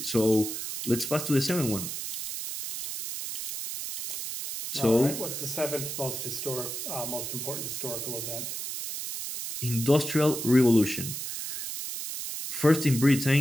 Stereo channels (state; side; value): noise; right; hiss, 5 dB below the sound